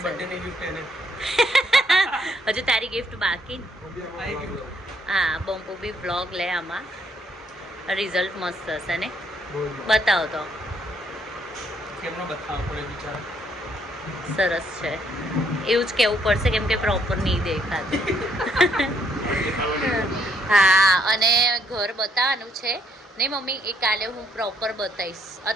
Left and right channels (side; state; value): both; normal; correlation 0.71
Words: બર્થડેની ગિફ્ટ એને. હજુ તારી ગિફ્ટ બાકી. હા, બંપુ બી બ્લોગ લે આમાં. રિઝલ્ટ મસ્ત હશે ને? બતાવો તો. કેમનો બતાવવો પડે બિચારા. સરસ છે એવું જ કહેવું પડશે કેમ કે પ્રોપર નહીં દેખાતું. હા, અને ઘર બતાવવાનું છે ને મમ્મી. એ કાલે હું પ્રોપર બતાવીશ.